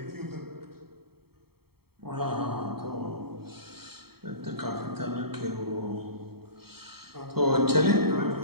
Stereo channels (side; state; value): left; late; 0.95 ms